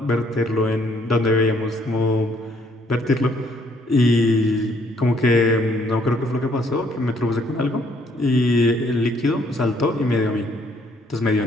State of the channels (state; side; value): normal; both; correlation 0.66